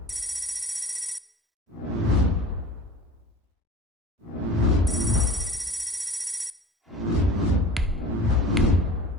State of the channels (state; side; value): normal; both; correlation 0.39